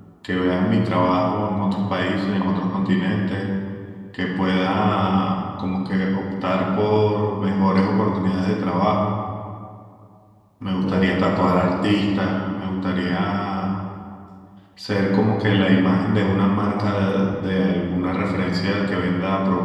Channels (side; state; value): both; identical; correlation 1.00